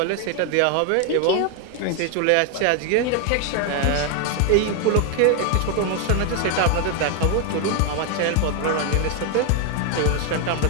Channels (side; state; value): both; different; correlation 0.01